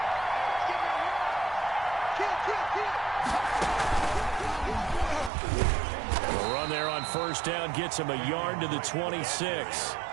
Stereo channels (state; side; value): drops out; left; at 5.3 s